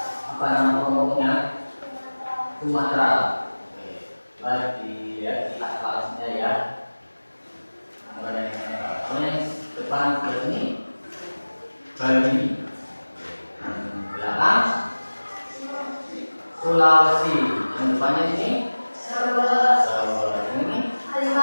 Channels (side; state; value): both; inverted; correlation -1.00